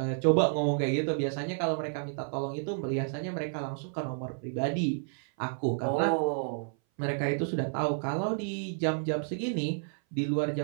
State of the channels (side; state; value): left; silent; 57 dB below the other